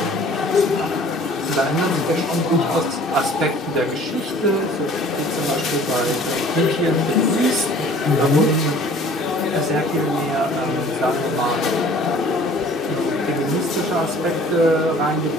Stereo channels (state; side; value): normal; both; correlation 0.51